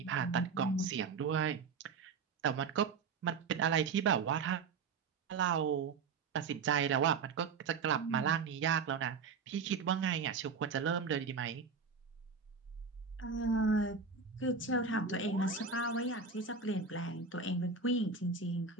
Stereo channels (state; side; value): quieter; left; 5.1 dB